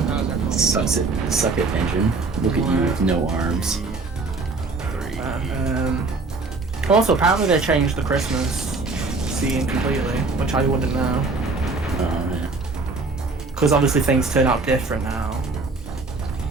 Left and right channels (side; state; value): left; quieter; 3.7 dB